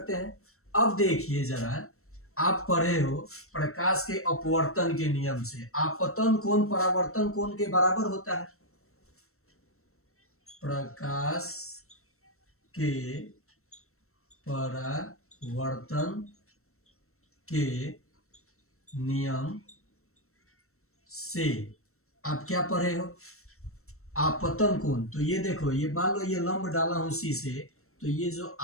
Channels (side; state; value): right; late; 0.63 ms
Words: हैं। अब देखिए जरा, आप पढ़े हो प्रकाश के अपवर्तन के नियम से, आपतन कोण परावर्तन कोण के बराबर होता है। प्रकाश के परावर्तन के नियम से आप क्या पढ़े हो, आपतन कोण। तो ये देखो, ये मान लो ये लंब डाला हूं सी से, तो ये जो